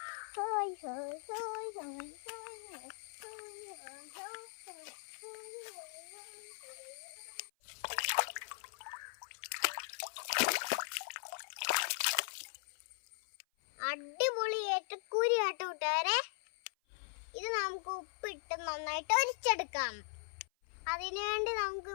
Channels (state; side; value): silent; right; 51 dB below the other